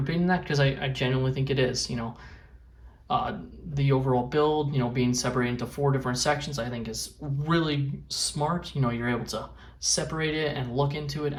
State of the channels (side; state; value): both; identical; correlation 1.00